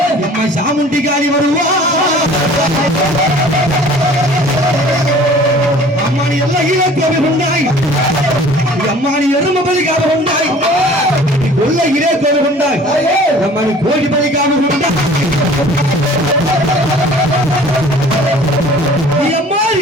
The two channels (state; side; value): normal; both; correlation 0.48